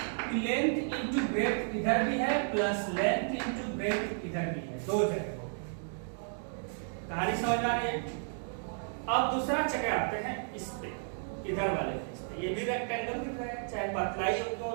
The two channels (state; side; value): silent; left; digital silence